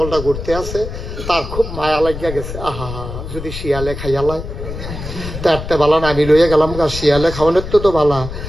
ঘুরতে আছে, তার খুব মায়া লাগিয়া গেছে। আহা, যদি শিয়ালে খাইয়ালায় তারতে বালা না, আমি লইয়া গেলাম গা, শিয়ালে খাওয়ানোর তো বালা।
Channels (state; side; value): noise; left; rumble, 8 dB below the sound